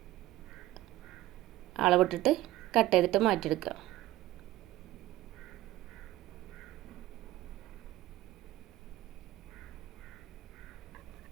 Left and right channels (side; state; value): left; quieter; 15.9 dB